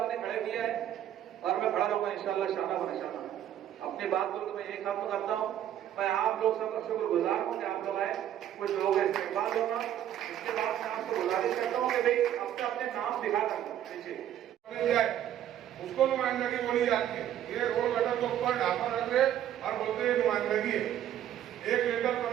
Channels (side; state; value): left; quieter; 11.1 dB